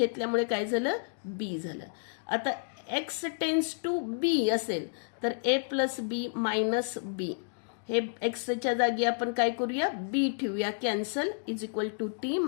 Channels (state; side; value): silent; right; digital silence